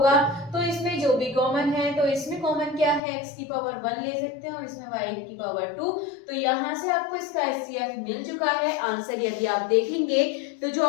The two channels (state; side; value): drops out; right; at 3.0 s